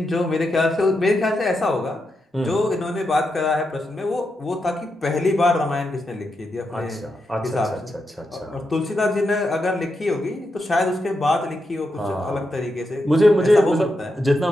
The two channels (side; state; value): both; normal; correlation 0.85